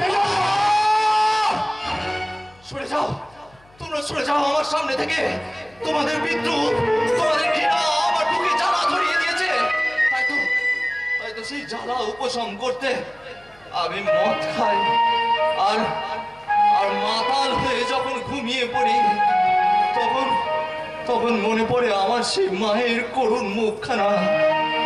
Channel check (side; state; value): left; noise; hum, 30 dB below the sound